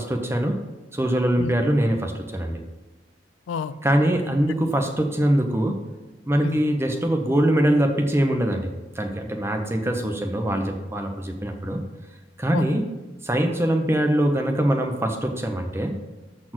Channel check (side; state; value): both; normal; correlation 0.87